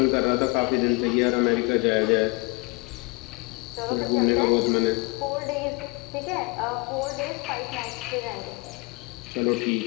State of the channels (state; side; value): quieter; right; 28.6 dB